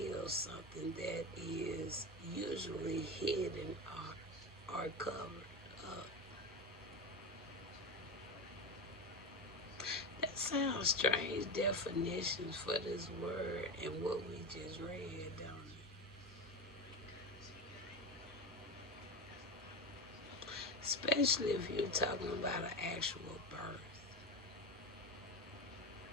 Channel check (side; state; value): both; normal; correlation 0.20